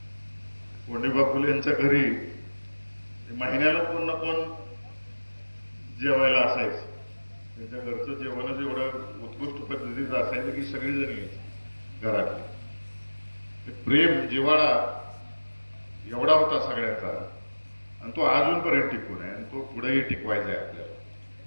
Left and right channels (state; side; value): inverted; both; correlation -1.00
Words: कोंडीबा फुले यांच्या घरी महिन्याला कोण ना कोण जेवायला असायचं. त्यांच्या घरचं जेवणच एवढं उत्कृष्ट पद्धतीचं असायचं की सगळेजण यायचे घरातले. प्रेम जिव्हाळा एवढा होता सगळ्यांचा आणि तो अजूनपर्यंत टिकून आहे आणि तो पुढेही टिकवायचा आहे आपल्याला.